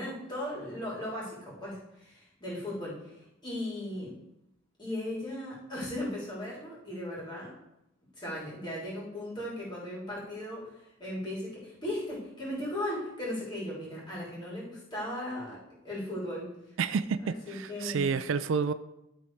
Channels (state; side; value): normal; both; correlation 0.41